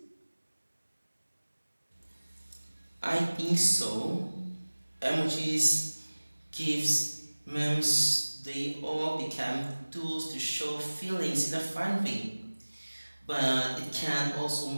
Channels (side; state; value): both; inverted; correlation -1.00